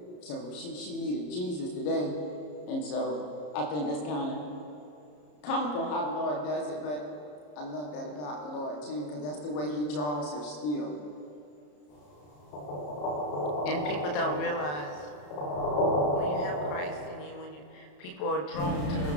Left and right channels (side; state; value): right; late; 33 ms